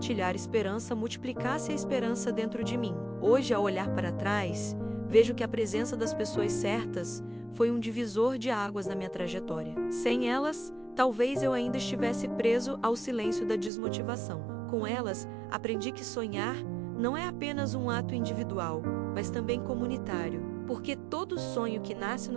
esperança multiplicasse a esperança dentro de mim. Hoje, ao olhar para trás, vejo que a presença das pessoas certas foi um divisor de águas na minha trajetória. Sem elas, talvez eu ainda estivesse preso ao silêncio da desmotivação. Com elas, aprendi que sonhar não é apenas um ato individual, mas também comunitário, porque todo sonho que nasce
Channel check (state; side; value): drops out; left; at 13.7 s